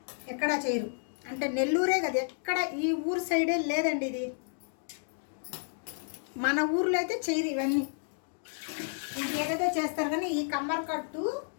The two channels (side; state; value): right; silent; digital silence